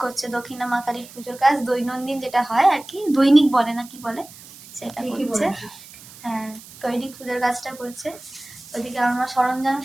করছে, দক্ষিণা মা কালীর পুজোর কাজ, দৈনন্দিন যেটা হয় আর কি, দৈনিক বলে না কি বলে, সেটা করছে। হ্যাঁ, দৈনিক পুজোর কাজটা করছে। ওইদিকে আমার মা সরঞ্জাম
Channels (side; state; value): right; noise; hiss, 19 dB below the sound